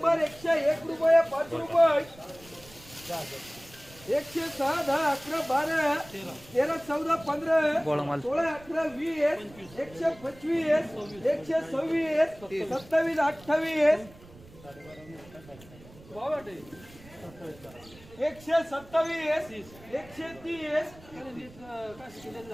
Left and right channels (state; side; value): noise; right; rumble, 22 dB below the sound